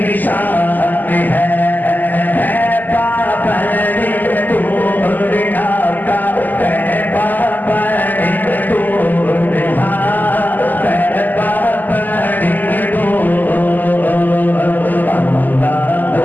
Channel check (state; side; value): late; right; 0.085 ms